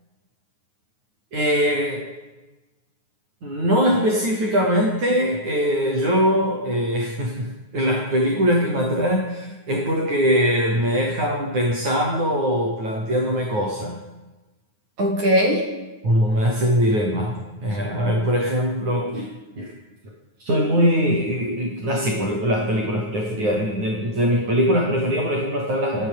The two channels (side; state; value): left; late; 9.5 ms